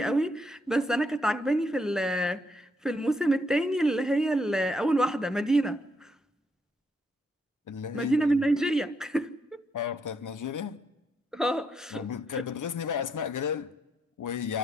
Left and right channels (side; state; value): both; normal; correlation 0.76